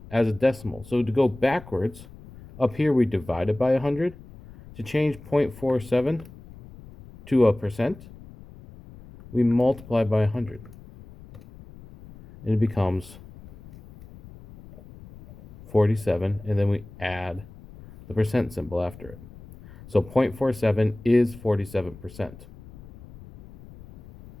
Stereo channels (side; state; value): left; noise; rumble, 19 dB below the sound